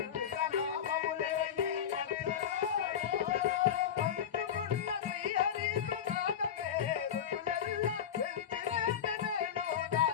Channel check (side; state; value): right; quieter; 8.7 dB